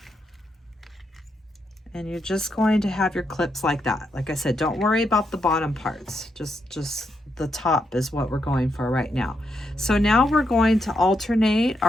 And you're just going to have your clips like that. Like I said, don't worry about the bottom parts. Just the top is what we're going for right now. So now we're going to alternate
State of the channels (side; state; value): both; normal; correlation 0.81